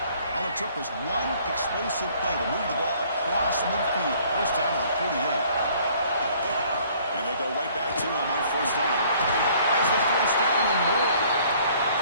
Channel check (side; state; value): both; inverted; correlation -0.58